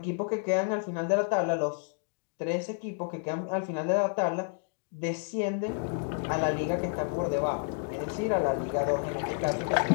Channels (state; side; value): silent; right; 58 dB below the other